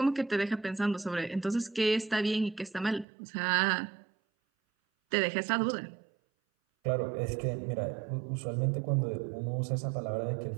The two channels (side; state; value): left; drops out; at 3.1 s